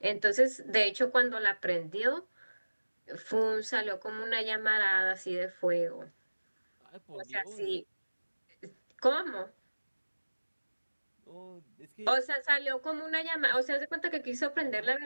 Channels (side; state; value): both; inverted; correlation -1.00